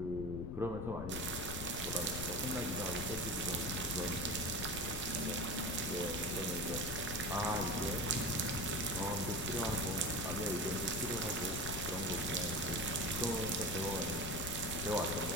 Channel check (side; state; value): left; noise; rumble, 6 dB below the sound